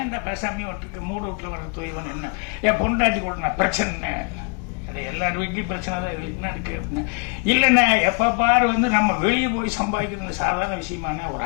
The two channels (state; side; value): quieter; right; 34.9 dB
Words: பேசாமே விட்டுருக்கு, மூட வீட்டில் வர தூயவன் என்ன என் பொண்டாட்டி கூட நான் பிரச்சனை, அது எல்லார் வீட்லையும் பிரச்சனை தான், என்ன இருக்கு அப்படின்னு. இல்லைண்ணே எப்போ பாரு வந்து நம்ம வெளியே போய் சம்பாதிக்கிறது சாதாரண விஷயமான, ஒரு